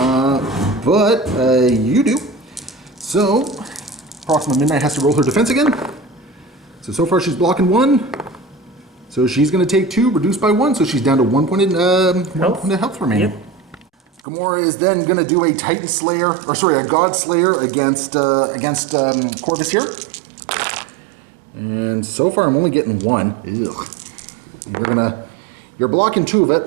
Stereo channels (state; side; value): drops out; left; at 14.2 s